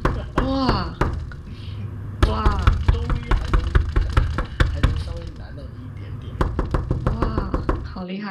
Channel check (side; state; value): both; identical; correlation 1.00